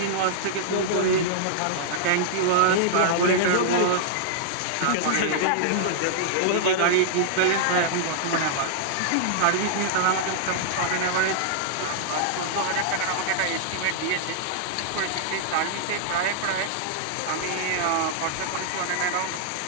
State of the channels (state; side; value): different; both; correlation -0.02